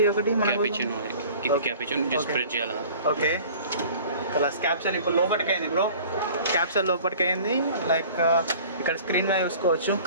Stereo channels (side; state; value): both; inverted; correlation -0.46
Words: ఒకటి క్యాపుచినో, క్యాపుచినో జస్ట్ స్ప్రెడ్ చేయాలా. ఓకే, ప్లస్ క్యాప్సూల్ ఇప్పుడు లోపలికి అయింది బ్రో, క్యాప్సూల్ లోపలికి అయింది. లైక్ ఇక్కడ స్క్రీన్ మీద చూసుకోవచ్చు.